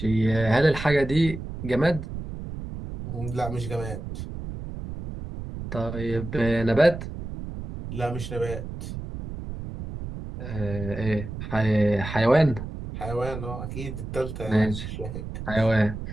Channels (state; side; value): noise; right; rumble, 8 dB below the sound